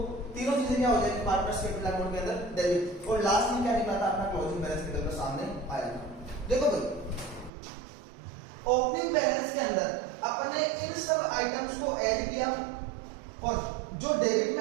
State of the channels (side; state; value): left; drops out; at 7.5 s